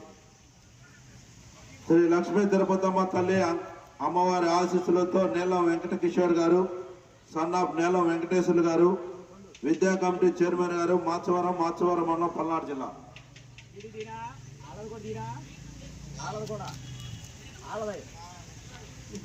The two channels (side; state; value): both; identical; correlation 1.00